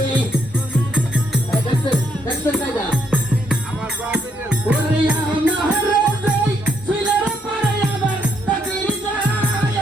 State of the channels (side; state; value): both; normal; correlation 0.74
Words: দেখছেন দেখছেন কায়দা? ওরে আমার রাজাই ছিলার পরে আবার তাকির যায়